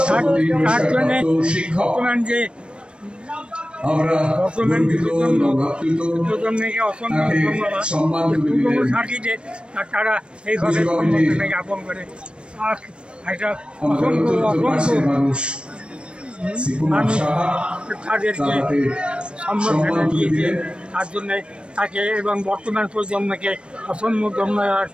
তারা এইভাবে জ্ঞাপন করে তাদেরকে সম্বর্ধনা দিয়েছে। তার জন্য তাকে এবং বর্তমান প্রজন্মকে অসংখ্য ধন্যবাদ।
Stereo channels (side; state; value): left; late; 0.056 ms